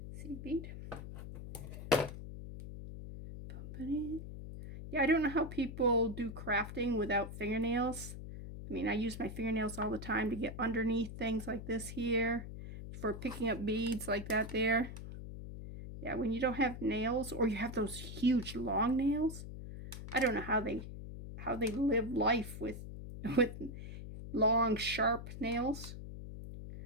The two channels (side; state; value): left; noise; hum, 10 dB below the sound